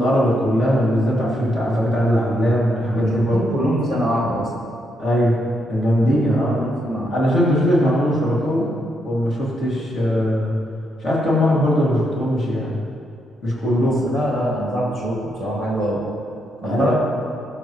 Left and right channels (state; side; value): normal; both; correlation 0.79